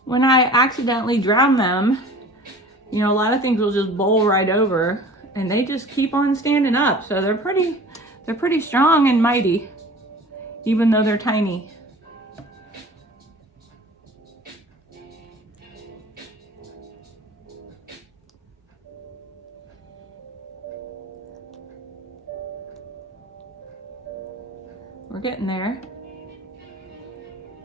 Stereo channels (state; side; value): normal; both; correlation 0.43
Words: when I accidentally drown them, you know, a lot of things will just bowl right over, and they just keep on standing up. So they're pretty strong and mighty, even though they're tiny. We're getting there.